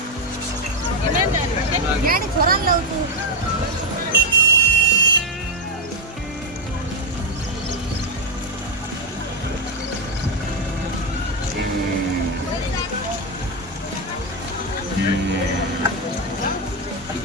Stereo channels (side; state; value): both; normal; correlation 0.06